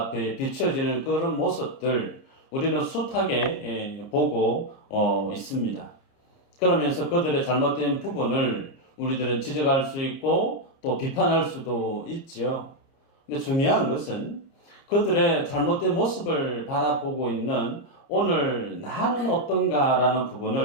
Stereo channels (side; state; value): right; late; 29 ms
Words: 비춰지는 그런 모습들, 우리는 숱하게 보고 있습니다. 그러면서 그들의 잘못된 부분을 우리들은 지적할 수 있고 또 비판할 수도 있죠. 근데 중요한 것은 그들의 잘못된 모습을 바라보고 있는 오늘 나는 어떤가라는